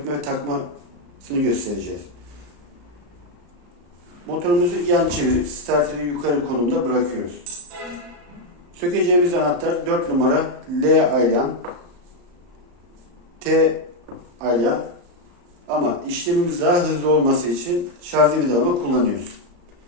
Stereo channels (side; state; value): left; late; 35 ms